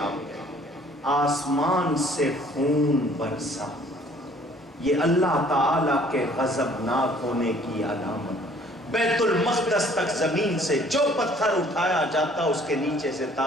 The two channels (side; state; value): both; normal; correlation 0.57